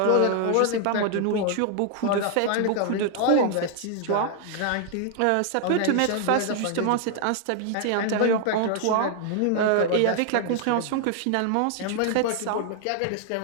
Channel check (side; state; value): both; different; correlation 0.00